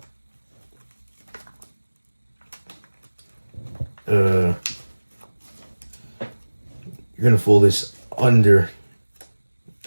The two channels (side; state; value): both; inverted; correlation -1.00